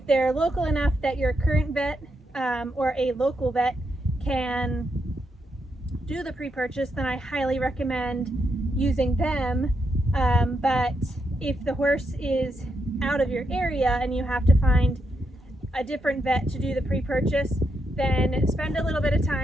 they're local enough that your current vet or a local vet can do the pre-purchase, then I highly recommend using them. But if the horse is out of your area and you have to find a different vet to do the pre-purchase, then spend a little bit of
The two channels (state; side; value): normal; both; correlation 0.81